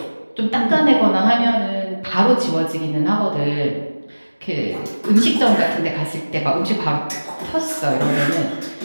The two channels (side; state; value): both; inverted; correlation -1.00